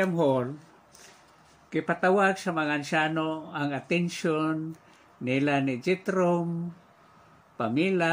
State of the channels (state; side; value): identical; both; correlation 1.00